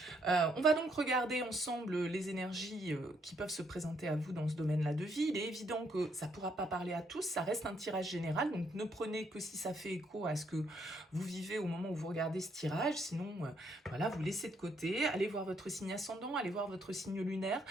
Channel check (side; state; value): both; normal; correlation 0.72